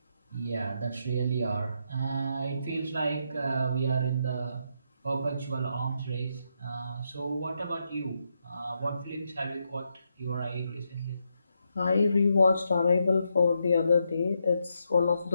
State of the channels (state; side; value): inverted; both; correlation -0.81